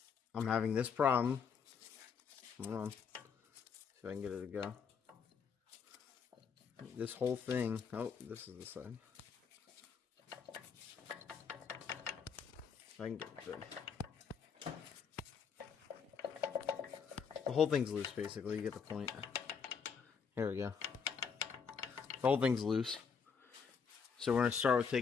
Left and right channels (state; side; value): quieter; right; 6.2 dB